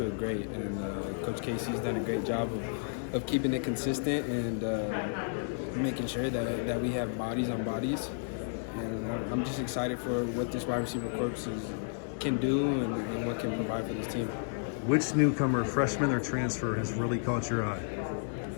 great, and Coach Casey's done a great job of keeping it consistent and making sure that we have bodies on bodies. And I'm just excited for what this wide receiver corps can do and what can provide for this team. Which newcomer, freshman or transfer, has really caught your eye?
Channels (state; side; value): silent; right; 56 dB below the other